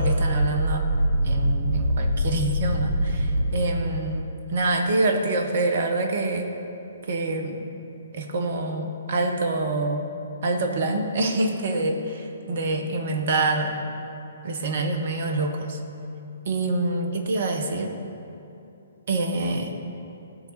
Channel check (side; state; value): both; inverted; correlation -0.62